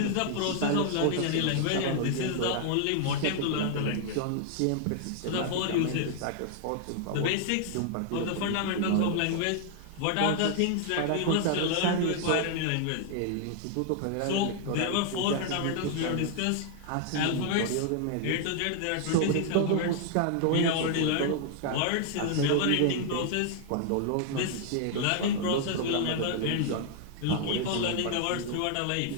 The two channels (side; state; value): both; different; correlation 0.00